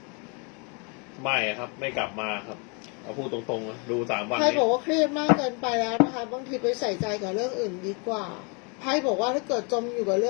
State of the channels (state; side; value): quieter; right; 34.1 dB